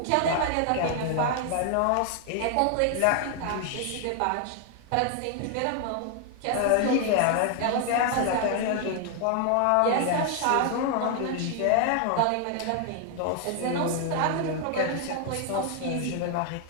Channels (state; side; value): different; both; correlation 0.00